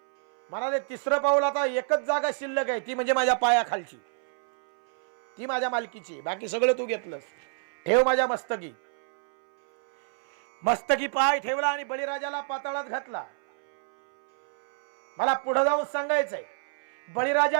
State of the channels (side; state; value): left; silent; 60 dB below the other